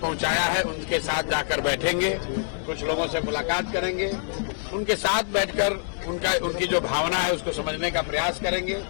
है, उनके साथ जाकर बैठेंगे, कुछ लोगों से मुलाकात करेंगे, उनके साथ बैठकर उनकी जो भावना है उसको समझने का प्रयास करेंगे,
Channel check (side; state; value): right; silent; digital silence